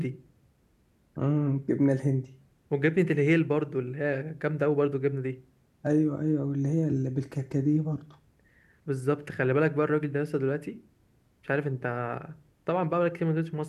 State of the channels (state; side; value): identical; both; correlation 1.00